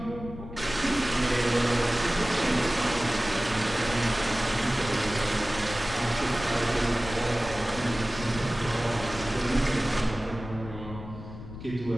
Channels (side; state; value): left; noise; rumble, 12 dB below the sound